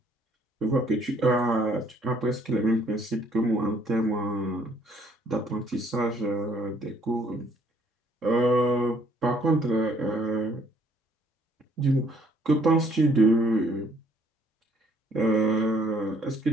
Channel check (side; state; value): both; normal; correlation 0.63